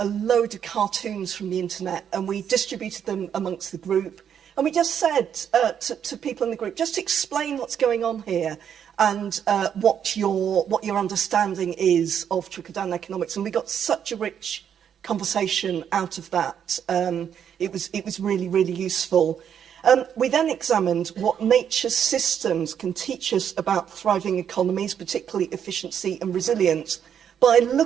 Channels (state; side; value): quieter; left; 8.6 dB